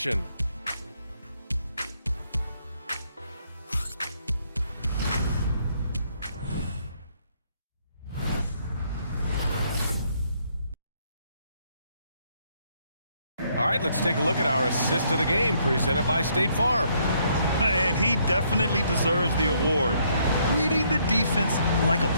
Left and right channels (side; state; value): both; inverted; correlation -0.70